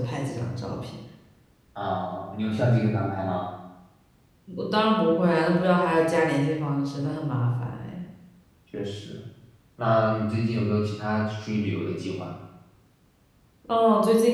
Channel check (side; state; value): both; identical; correlation 1.00